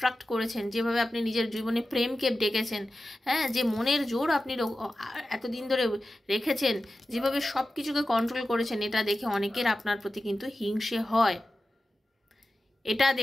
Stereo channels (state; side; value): normal; both; correlation 0.94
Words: করেছেন, যেভাবে আপনি নিজের জীবনে প্রেমকে ডেকেছেন, হ্যাঁ, যে মনের জোর আপনি এতদিন ধরে রেখেছেন, যেভাবে সব কিছুকে কন্ট্রোল করেছেন, এটা দেখে অনেকের আপনার প্রতি কিন্তু হিংসে হয়। এটা